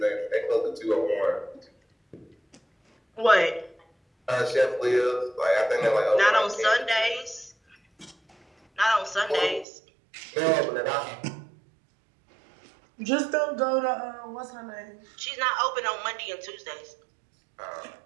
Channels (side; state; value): left; drops out; at 9.7 s